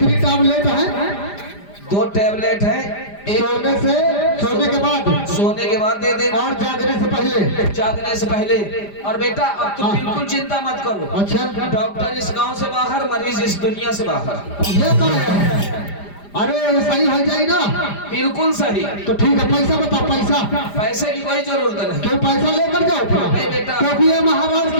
टैबलेट है? 2 टैबलेट है। सोने के बाद दे देना और जागने से पहले। और बेटा अब तुम बिल्कुल चिंता मत करो। अच्छा डॉक्टर इस गांव से बाहर, मरीज इस दुनिया से बाहर। ये तो है। अरे सही हो जाए ना? बिल्कुल सही। तो ठीक है, पैसा बताओ। पैसे की कोई जरूरत नहीं। क्यों? पैसा लेकर जाओ नहीं बेटा, क्योंकि ये महाराज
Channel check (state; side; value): late; right; 5.0 ms